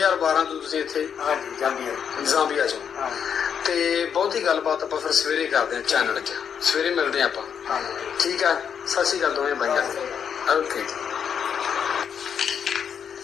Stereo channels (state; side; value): quieter; right; 7.7 dB